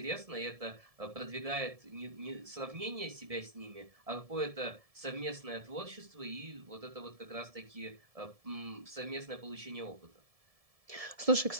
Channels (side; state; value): left; late; 1.7 ms